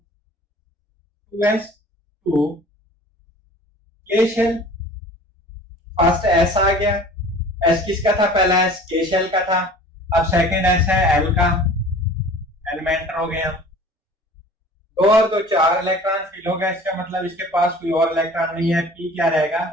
2s2। के शेल फर्स्ट एस आ गया। एस किसका था? पहला एस के शेल का था। अब सेकंड एस है एल का, एल में एंटर हो गए हम। 2 और 2 4 इलेक्ट्रॉन फिल हो गया। इसका मतलब इसके पास कोई और इलेक्ट्रॉन नहीं है। पी क्या रहेगा?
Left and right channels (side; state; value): both; normal; correlation 0.45